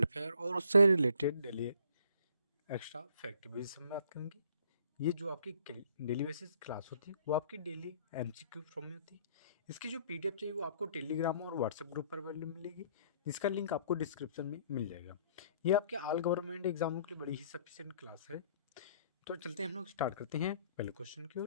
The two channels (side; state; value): both; inverted; correlation -0.60